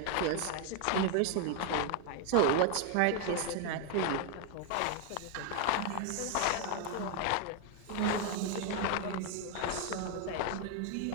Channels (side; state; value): both; different; correlation 0.01